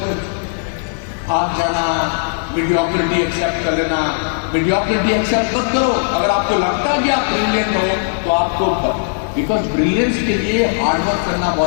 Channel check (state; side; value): silent; right; digital silence